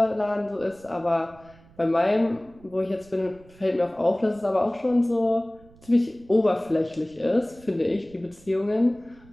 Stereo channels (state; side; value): noise; right; rumble, 25 dB below the sound